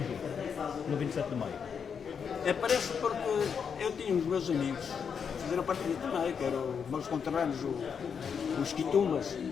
no 27 de maio? Aparece porque eu tinha os meus amigos que fizeram parte do também, que eram os meus conterrâneos, os Quitumbas,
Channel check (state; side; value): quieter; right; 6.7 dB